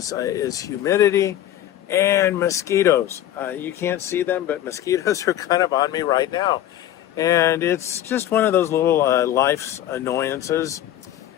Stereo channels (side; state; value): right; quieter; 12.1 dB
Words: humidity and mosquitoes. You can't see them, but mosquitoes are kind of on me right now. And it's just one of those little life's annoyances.